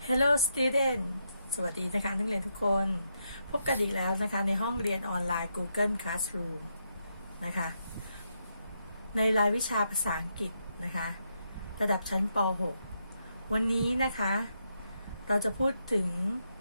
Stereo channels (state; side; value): inverted; both; correlation -0.81